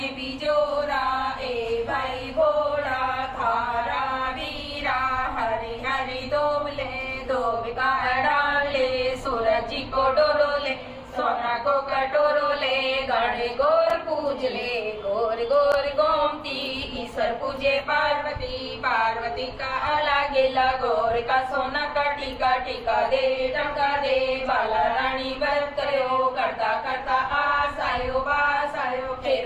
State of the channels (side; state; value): both; identical; correlation 1.00